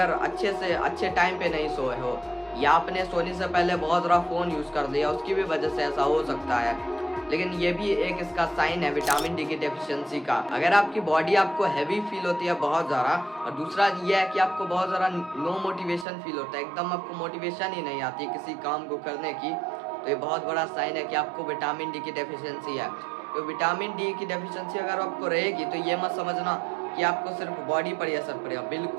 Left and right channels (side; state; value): left; drops out; at 16.1 s